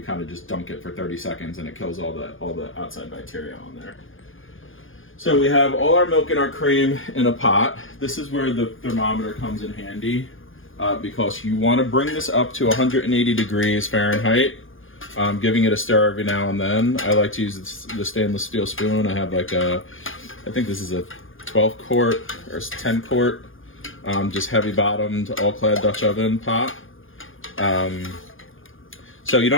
kind of just dunk it for 30 seconds, and it kills all the outside bacteria on there. So we have all our milk and our cream in a pot. This is where the thermometer comes in handy, because you want to bring this up to 180 degrees Fahrenheit. Giving it a stir every now and then. I like to use the stainless steel spoon. I have like I think this is a 12 quart or 10 quart, just heavy bottomed, all clad Dutch oven pot. So you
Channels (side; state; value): right; late; 0.58 ms